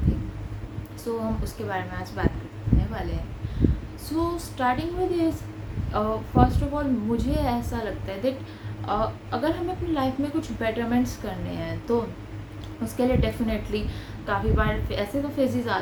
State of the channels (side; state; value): both; identical; correlation 1.00